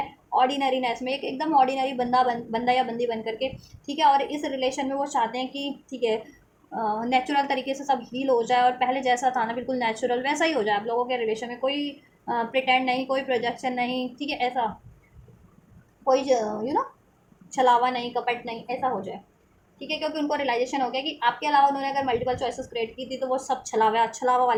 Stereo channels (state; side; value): identical; both; correlation 1.00